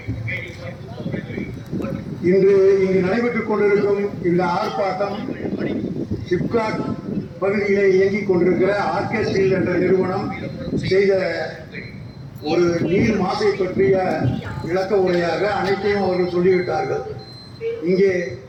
இன்று இங்கு நடைபெற்றுக் கொண்டிருக்கும் இந்த ஆர்ப்பாட்டம் சிப்காட் பகுதியிலே இயங்கிக் கொண்டிருக்கிற ஆர்கே ஸ்டீல் என்ற நிறுவனம் செய்த ஒரு நீர் மாசை பற்றிய விளக்க உரையாக அனைத்தையும் அவர்கள் சொல்லிவிட்டார்கள். இங்கே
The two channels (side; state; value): both; identical; correlation 1.00